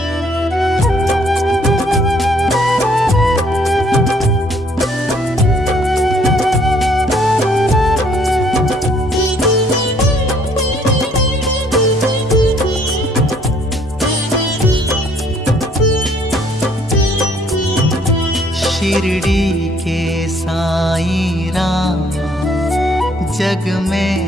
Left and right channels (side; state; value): both; normal; correlation 0.63